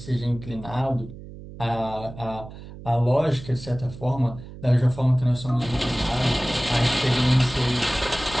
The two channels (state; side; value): noise; right; hum, 15 dB below the sound